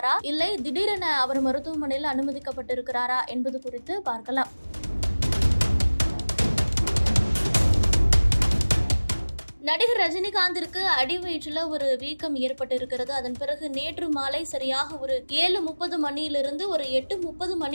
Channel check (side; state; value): both; inverted; correlation -1.00